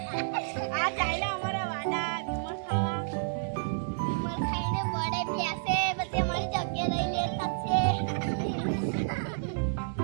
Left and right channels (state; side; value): silent; left; digital silence